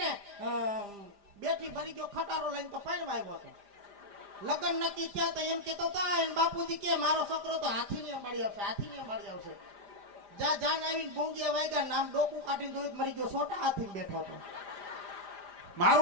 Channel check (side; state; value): left; late; 5.0 ms